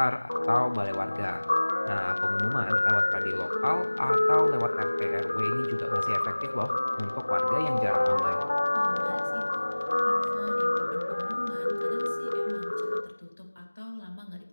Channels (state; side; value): inverted; both; correlation -1.00